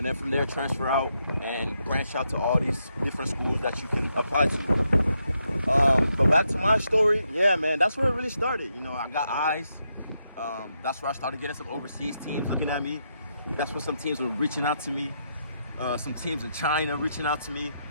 then from there transfer out and branch out to all these different schools that you can apply to. But back to my story, yeah, man, that's where it really started. You know, I got eyes. That's where I started getting some overseas teams looking at me. That's where some teams were reaching out to me. Some teams in China reaching out to me.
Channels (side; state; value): both; inverted; correlation -0.81